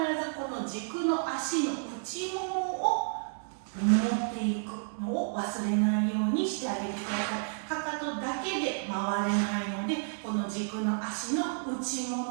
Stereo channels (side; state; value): left; silent; 57 dB below the other